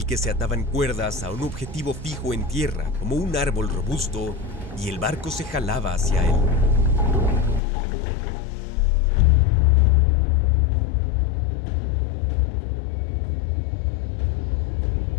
que se ataban cuerdas a un objetivo fijo en tierra como un árbol robusto y el barco se jalaba hacia él.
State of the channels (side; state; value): right; drops out; at 7.6 s